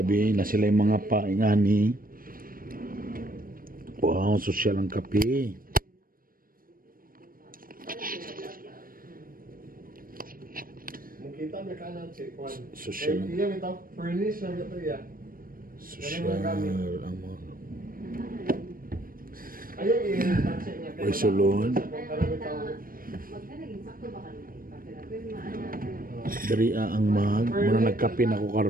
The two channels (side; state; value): left; late; 0.41 ms